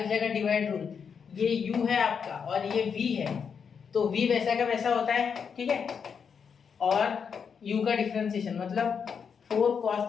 जाएगा डिवाइड रूल। ये u है आपका और ये v है, तो v वैसा का वैसा होता है, ठीक है। और u का डिफरेंशिएशन मतलब 4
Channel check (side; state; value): right; quieter; 6.6 dB